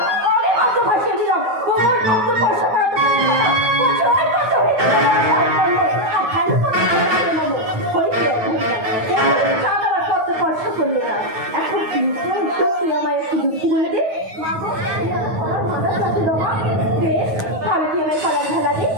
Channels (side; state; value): left; late; 9.4 ms